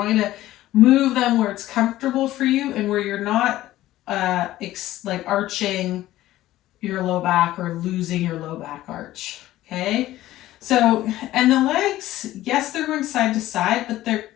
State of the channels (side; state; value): right; quieter; 15.1 dB